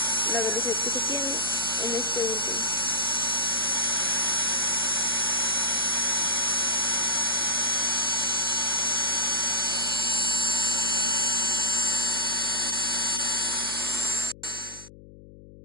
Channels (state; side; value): noise; left; hum, 19 dB below the sound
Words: la velocidad que se tiene en este último.